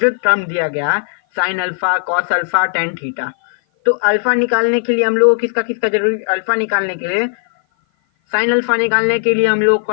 दिया गया sine alpha, cos alpha, tan theta, तो अल्फा निकालने के लिए हम लोगों को किसका किसका जरूरी, अल्फा निकालने के लिए, साइन अल्फा निकालने के लिए हम लोग को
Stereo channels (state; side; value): silent; right; 56 dB below the other